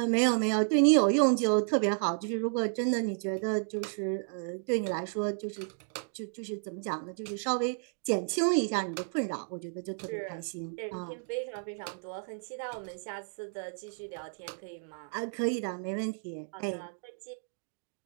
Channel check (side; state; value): left; silent; 56 dB below the other